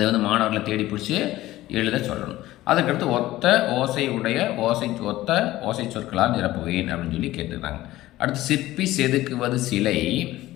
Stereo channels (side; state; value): right; quieter; 16.1 dB